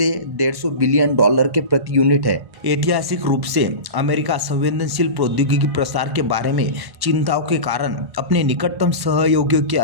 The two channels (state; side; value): late; left; 1.1 ms